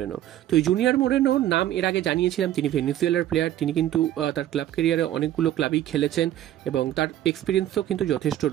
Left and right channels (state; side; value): quieter; left; 12.6 dB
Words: তো এই জুনিয়র মোরেনোর নাম এর আগে জানিয়েছিলাম। তিনি ভেনেজুয়েলার প্লেয়ার। তিনি কিন্তু তার ক্লাব ক্যারিয়ারে অনেকগুলো ক্লাবেই খেলেছেন এবং তার এক্সপিরিয়েন্সও কিন্তু যথেষ্ট